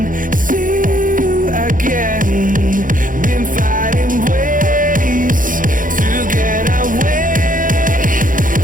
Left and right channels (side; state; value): left; late; 0.39 ms